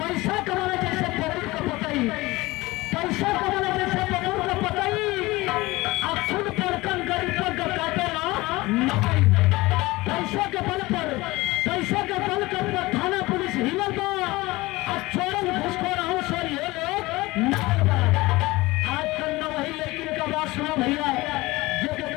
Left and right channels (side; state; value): right; quieter; 20.6 dB